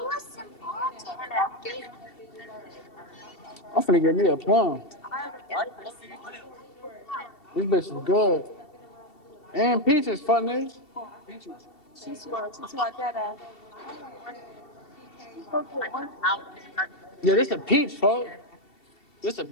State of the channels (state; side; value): late; right; 2.7 ms